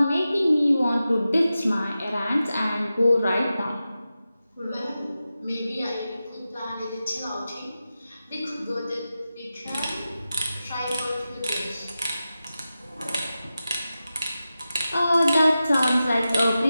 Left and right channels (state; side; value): inverted; both; correlation -0.93